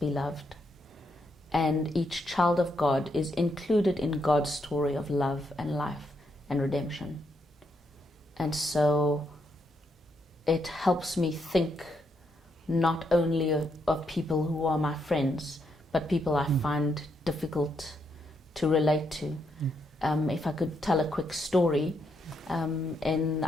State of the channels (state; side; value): normal; both; correlation 0.78